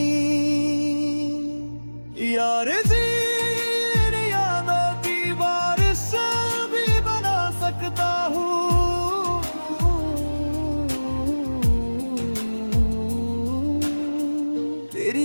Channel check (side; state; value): both; inverted; correlation -1.00